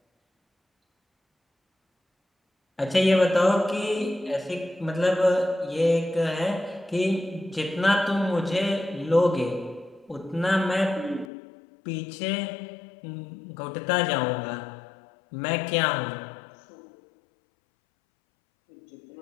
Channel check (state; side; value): drops out; right; at 11.3 s